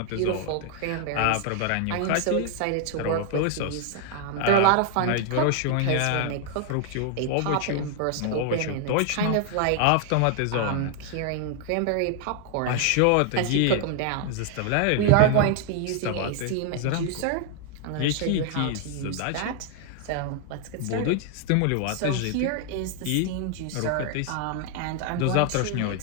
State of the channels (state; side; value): different; both; correlation 0.00